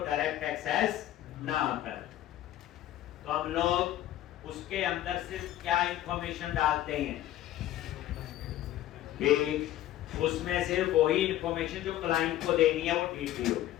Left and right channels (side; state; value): right; quieter; 13.5 dB